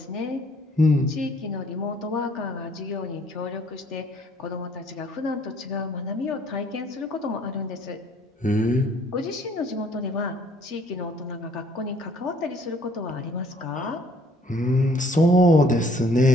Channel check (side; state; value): both; normal; correlation 0.60